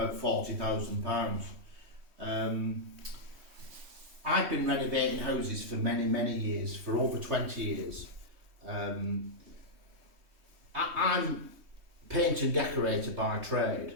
£40,000. I've been renovating houses for many years, for over 20 years. I'm paint and decorator by trade,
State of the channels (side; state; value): left; late; 3.1 ms